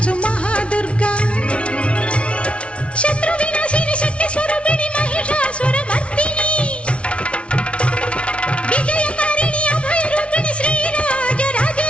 మహాదుర్గా శత్రు వినాశిని శక్తి స్వరూపిణి మహిషాసుర మర్దిని విజయకారిణి అభయ రూపిణి శ్రీరాజ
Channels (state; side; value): late; right; 0.060 ms